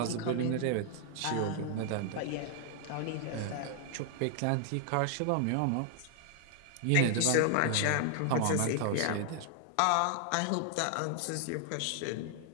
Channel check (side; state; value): both; different; correlation 0.00